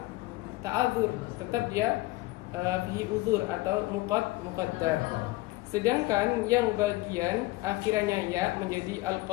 ta'adzur, tetap dia fihi uzur atau muqaddar. Sedangkan yang bagian akhirannya ya menjadi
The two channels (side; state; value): right; quieter; 20.2 dB